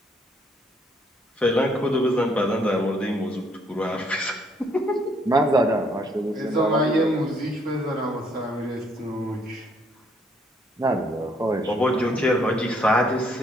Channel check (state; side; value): normal; both; correlation 0.67